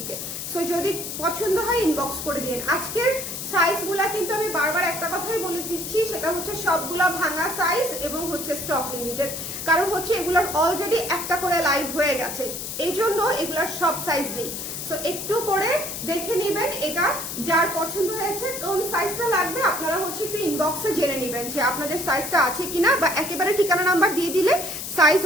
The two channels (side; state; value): left; noise; hiss, 6 dB below the sound